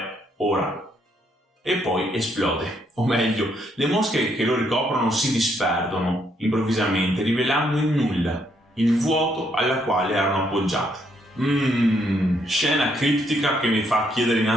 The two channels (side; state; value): both; normal; correlation 0.73